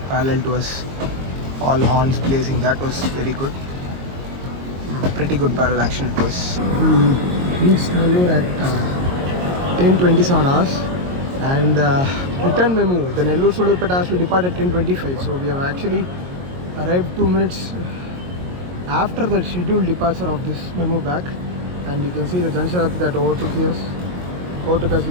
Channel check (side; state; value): left; late; 22 ms